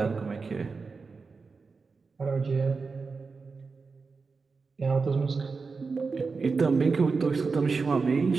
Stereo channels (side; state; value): left; quieter; 4.6 dB